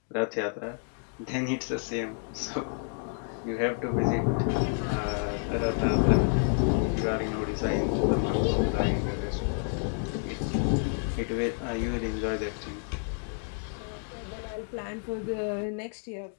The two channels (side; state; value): right; silent; 58 dB below the other